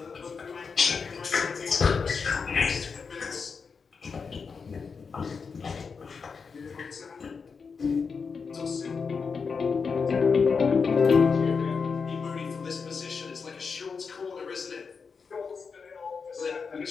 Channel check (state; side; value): quieter; right; 5.4 dB